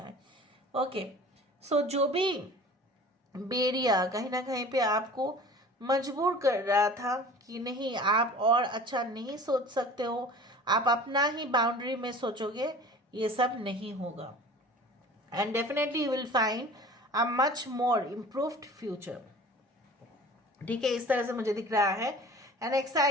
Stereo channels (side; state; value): both; normal; correlation 0.43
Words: ओके, सो जो भी बेरिया कहीं ना कहीं पे आपको मजबूर कर रहा था कि नहीं आप और अच्छा नहीं सोच सकते हो, आप अपना ही बाउंड्री में सोचोगे, ये सब नहीं होगा. And definitely you will find a much more improved future. ठीक है, इस तरह से मुझे दिख रहा है an